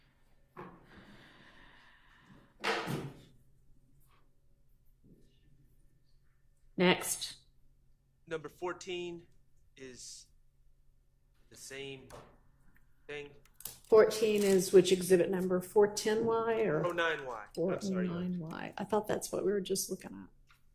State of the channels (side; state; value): both; identical; correlation 1.00